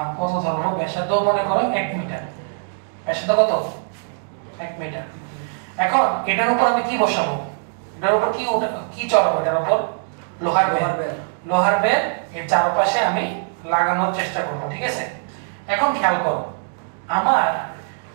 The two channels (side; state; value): left; silent; digital silence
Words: কত ধরো, ব্যাসার্ধ মনে করো 1 মিটার। ব্যাসার্ধ কত? 1 মিটার। এখন এটার উপর আমি কি বসাবো? এটার উপর কি চড়াবো? এটার উপর লোহার বেল এর চারপাশে আমি লাগানোর চেষ্টা করব, ঠিক আছে? এখন খেয়াল করো, আমার